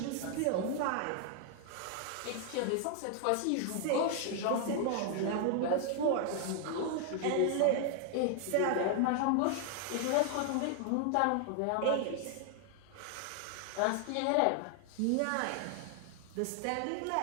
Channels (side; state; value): both; different; correlation 0.00